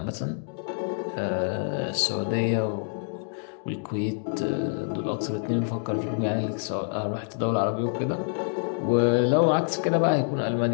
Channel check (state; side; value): silent; right; 60 dB below the other